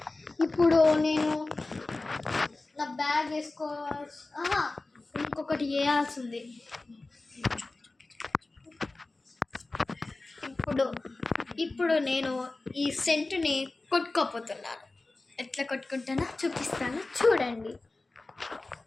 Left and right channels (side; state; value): right; quieter; 3.2 dB